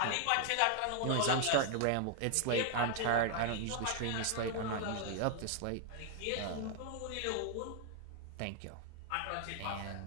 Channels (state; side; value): different; both; correlation 0.00